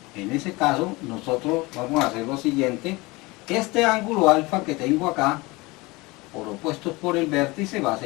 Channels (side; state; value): right; quieter; 23.2 dB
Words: en ese caso nosotros vamos a hacer lo siguiente: este ángulo alfa que tengo acá, por opuestos por el vértice, va a